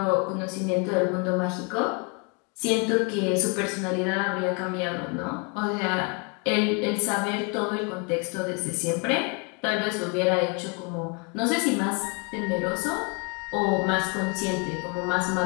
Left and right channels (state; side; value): quieter; right; 34.1 dB